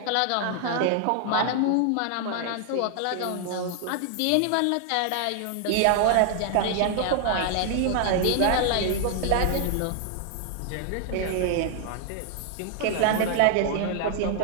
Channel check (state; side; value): different; both; correlation 0.00